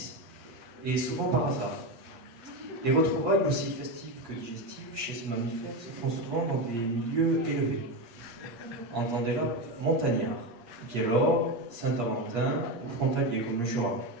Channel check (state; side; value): late; left; 8.5 ms